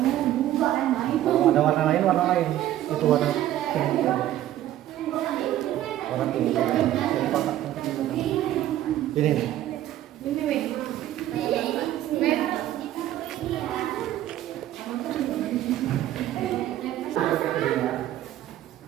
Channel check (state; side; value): quieter; left; 13.2 dB